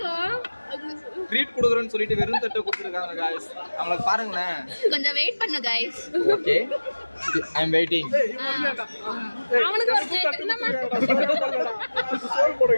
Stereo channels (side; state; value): both; inverted; correlation -1.00